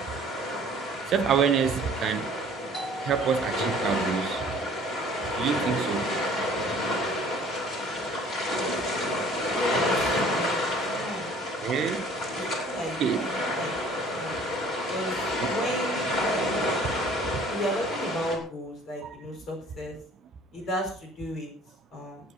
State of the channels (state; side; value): normal; both; correlation 0.52